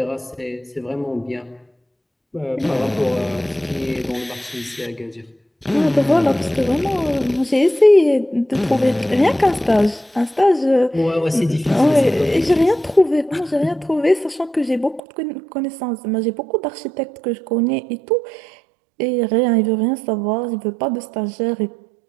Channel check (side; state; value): left; drops out; at 15.0 s